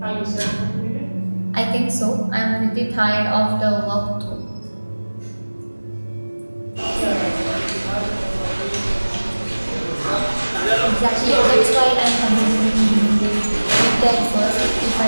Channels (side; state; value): both; inverted; correlation -1.00